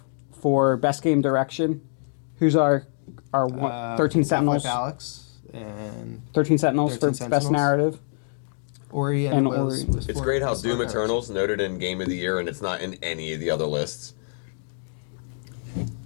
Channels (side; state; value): right; silent; digital silence